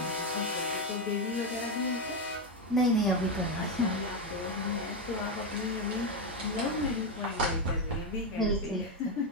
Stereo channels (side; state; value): both; normal; correlation 0.08